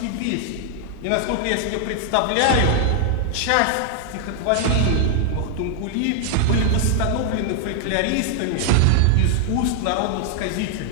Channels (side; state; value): both; different; correlation 0.00